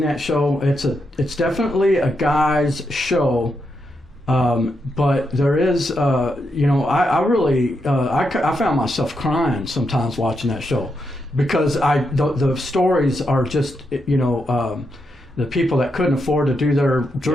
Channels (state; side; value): normal; both; correlation 0.83